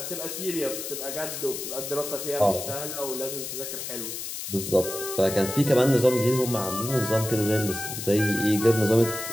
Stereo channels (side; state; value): left; noise; hiss, 7 dB below the sound